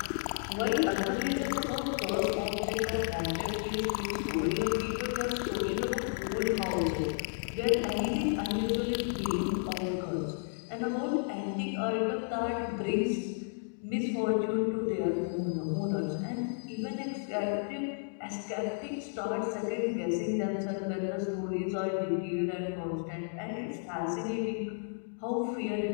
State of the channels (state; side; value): silent; right; digital silence